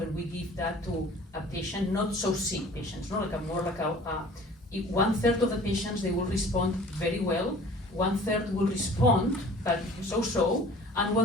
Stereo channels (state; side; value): normal; both; correlation 0.47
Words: we give that to a patient, not so sick patients, not like a more like if 1/3 of the patients, they will respond very well, 1/3 will respond, but so-so, and